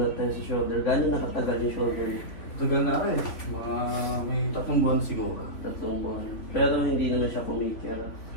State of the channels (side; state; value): right; late; 3.8 ms